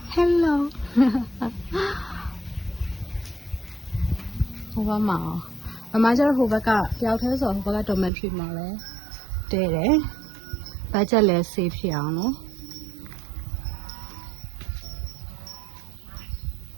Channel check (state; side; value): drops out; left; at 8.1 s